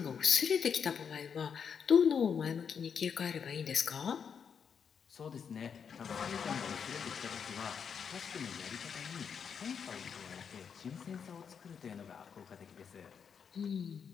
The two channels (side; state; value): right; quieter; 6.9 dB